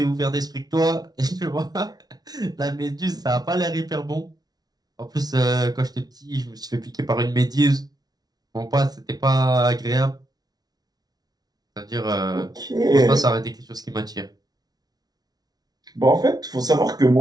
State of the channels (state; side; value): late; left; 0.19 ms